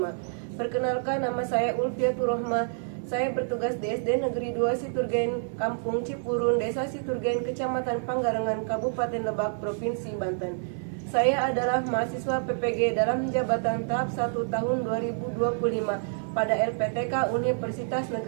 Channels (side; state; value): left; silent; digital silence